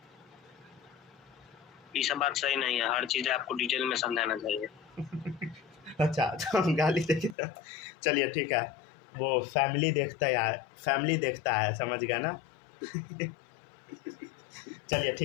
ये सब बात सही नहीं है, हर चीज आपको डिटेल में समझाना चाहिए। अच्छा तो हम गाली देखे, चलिए ठीक है, वो फैमिली देखता है, फैमिली देखता है, समझ गया ना। चलिए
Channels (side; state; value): right; drops out; at 7.4 s